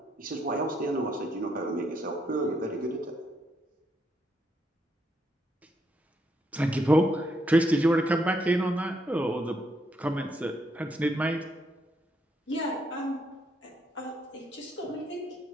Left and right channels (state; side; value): normal; both; correlation 0.76